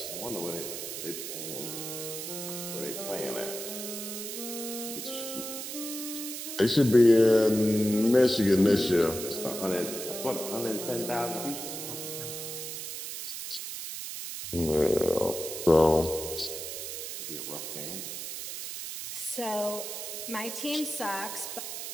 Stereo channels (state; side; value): noise; right; hiss, 7 dB below the sound